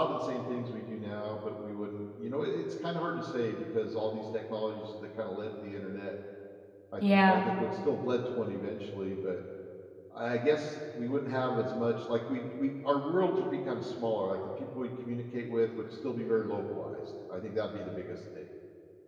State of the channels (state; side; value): identical; both; correlation 1.00